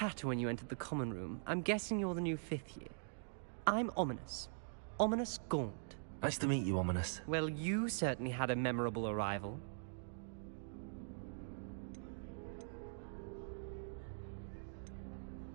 when you entered the common room, I'm guessing you're the new 5th year. I'm Ominis. Ominis Gaunt. Nice to meet you, Ominis. Well, you certainly had a memorable arrival.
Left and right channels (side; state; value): left; silent; digital silence